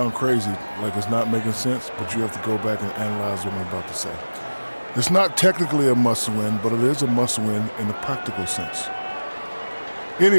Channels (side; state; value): both; inverted; correlation -1.00